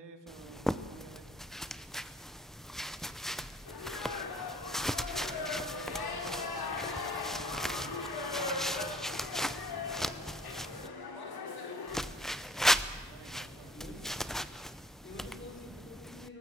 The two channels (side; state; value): both; normal; correlation 0.58